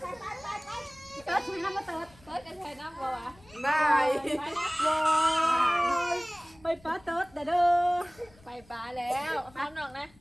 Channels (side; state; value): left; noise; rumble, 26 dB below the sound